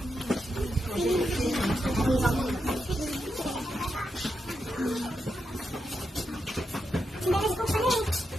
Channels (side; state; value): both; normal; correlation 0.85